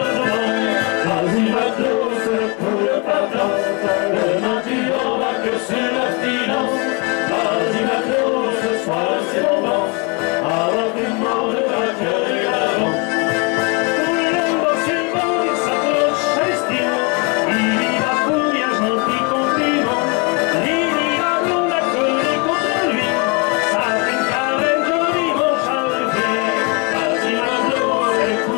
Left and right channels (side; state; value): right; quieter; 31.0 dB